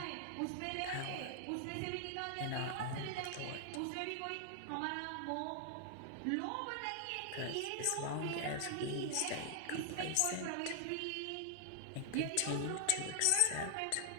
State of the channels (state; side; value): different; both; correlation 0.00